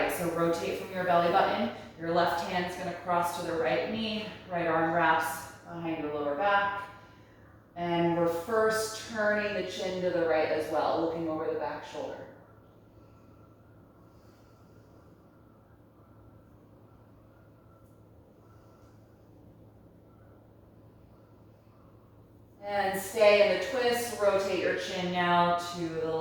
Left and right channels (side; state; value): both; identical; correlation 1.00